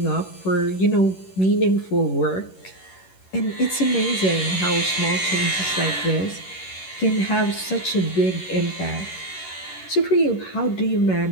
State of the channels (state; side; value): late; right; 11 ms